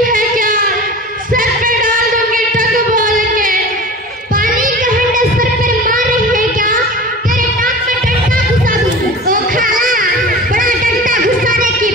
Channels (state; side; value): normal; both; correlation 0.36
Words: है क्या? सर पे डाल दूंगी टक बोल के। पानी का हंडा सर पर मार रही है क्या? तेरे नाक में डंडा घुसा दूंगी। ओ खाला, बड़ा डंडा घुसाने की